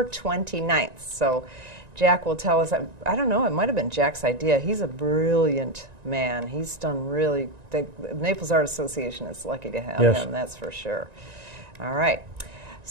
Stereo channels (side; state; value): left; late; 1.9 ms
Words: 29th. So Jack will tell us, I don't know, it might have been Jack's idea. He's a brilliant man. He's done really, the Naples Art Association is lucky to have him, that's for sure. All right.